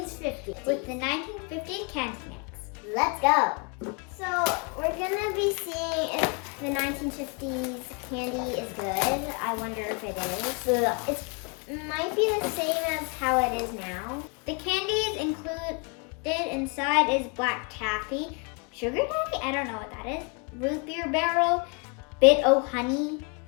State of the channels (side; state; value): right; quieter; 33.8 dB